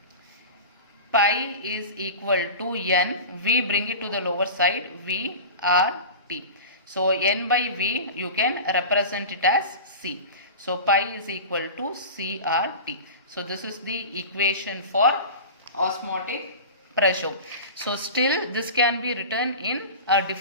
pi is equal to n. We bring it to the lower side, VRT. So n by V you can represent it as C. So pi is equal to CRT. So this is the equation for osmotic pressure. So still this can be written in a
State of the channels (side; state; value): both; inverted; correlation -0.32